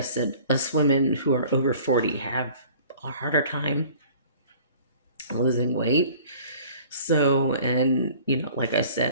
said, us women who are over 40 have a harder time losing weight. So, and like I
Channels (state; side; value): inverted; both; correlation -0.49